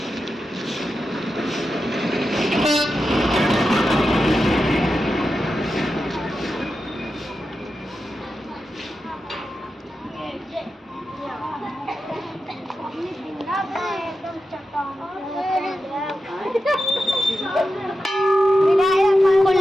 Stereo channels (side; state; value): both; normal; correlation 0.90